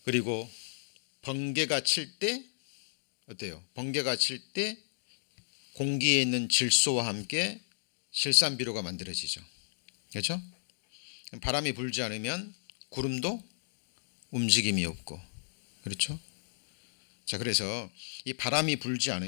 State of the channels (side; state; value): right; silent; digital silence